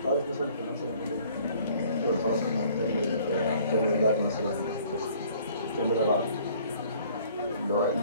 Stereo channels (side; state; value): both; inverted; correlation -0.56